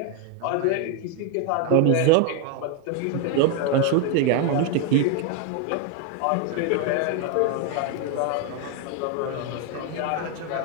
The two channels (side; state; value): both; different; correlation 0.01